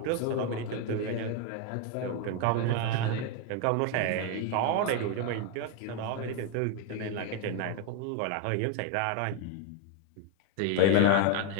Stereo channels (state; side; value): different; both; correlation 0.01